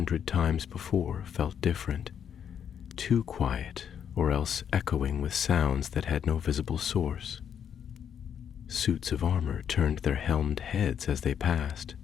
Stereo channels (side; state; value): right; quieter; 8.3 dB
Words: times before felt different, too quiet or else echoing with sounds that had no visible source. Suits of armor turned their helmed heads as they passed,